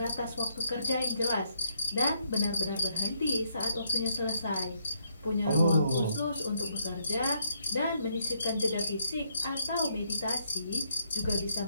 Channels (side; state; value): both; inverted; correlation -0.74